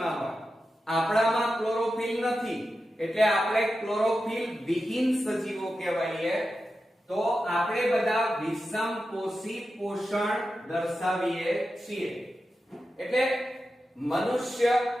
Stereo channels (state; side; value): normal; both; correlation 0.91